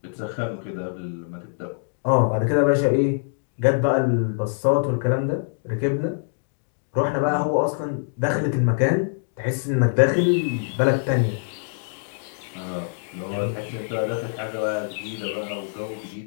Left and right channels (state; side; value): silent; right; digital silence